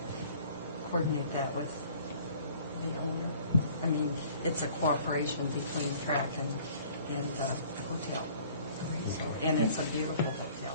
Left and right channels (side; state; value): both; inverted; correlation -0.52